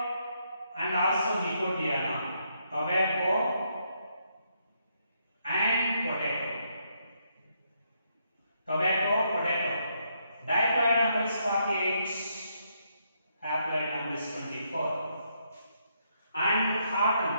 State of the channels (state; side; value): inverted; both; correlation -0.76